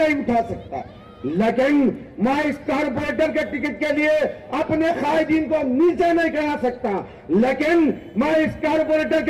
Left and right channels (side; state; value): both; identical; correlation 1.00